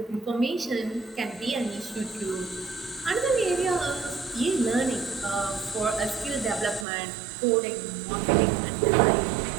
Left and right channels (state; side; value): drops out; left; at 6.9 s